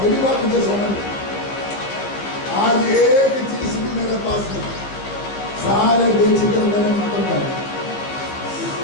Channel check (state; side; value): late; right; 15 ms